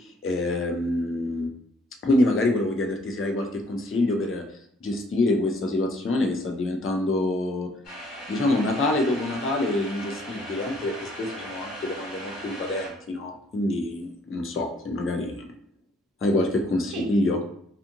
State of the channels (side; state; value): both; normal; correlation 0.63